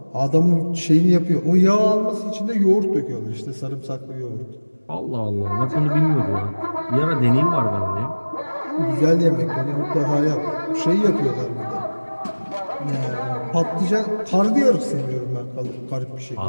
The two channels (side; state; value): both; inverted; correlation -1.00